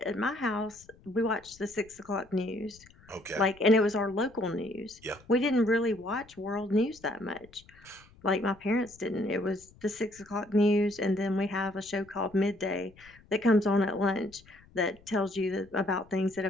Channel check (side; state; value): left; noise; rumble, 26 dB below the sound